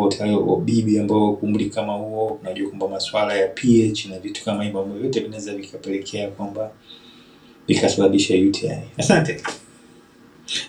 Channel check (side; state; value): both; identical; correlation 1.00